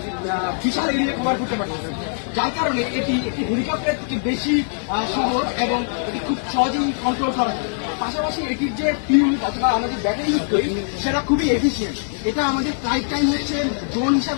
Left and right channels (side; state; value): right; silent; 64 dB below the other